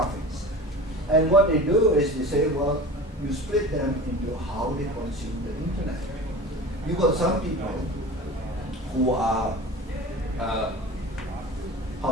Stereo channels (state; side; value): normal; both; correlation 0.36